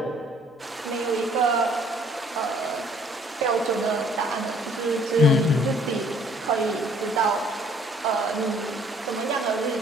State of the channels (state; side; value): normal; both; correlation 0.59